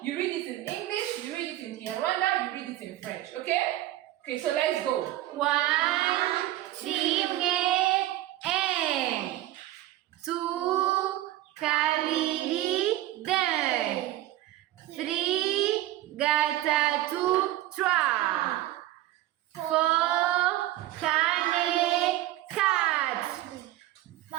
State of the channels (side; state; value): left; quieter; 15.0 dB